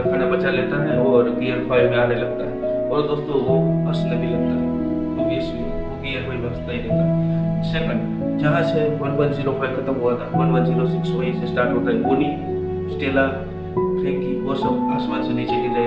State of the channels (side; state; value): both; identical; correlation 1.00